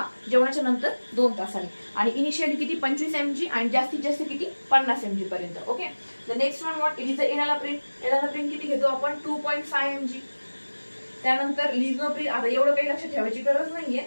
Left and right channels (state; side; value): inverted; both; correlation -1.00